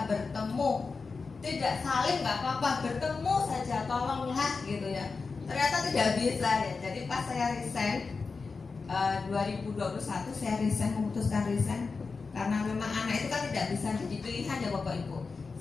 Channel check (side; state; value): right; quieter; 4.5 dB